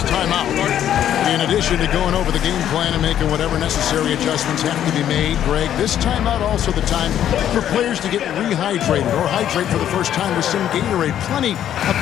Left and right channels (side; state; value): right; quieter; 10.7 dB